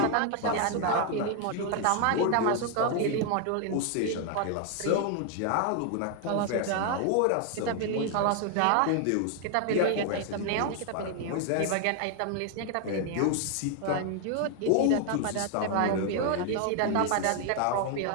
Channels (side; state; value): both; different; correlation 0.00